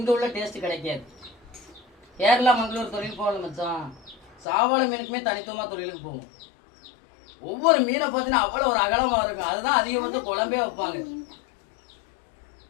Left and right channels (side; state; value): right; drops out; at 4.5 s